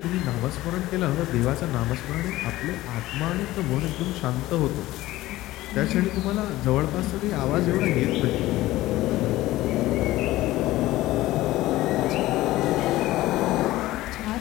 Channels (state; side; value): quieter; right; 16.9 dB